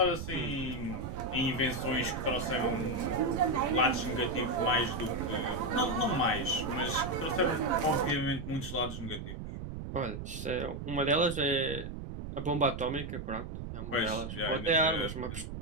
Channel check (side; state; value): right; noise; rumble, 7 dB below the sound